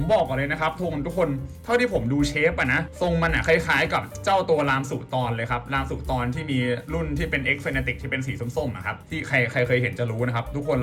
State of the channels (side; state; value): both; identical; correlation 1.00